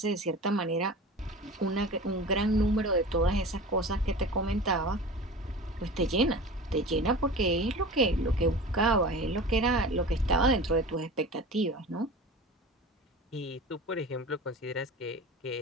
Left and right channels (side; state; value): both; normal; correlation 0.35